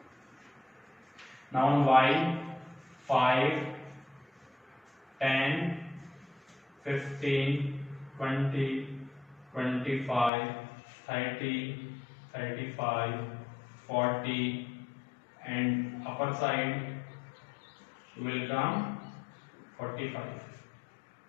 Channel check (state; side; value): drops out; right; at 10.3 s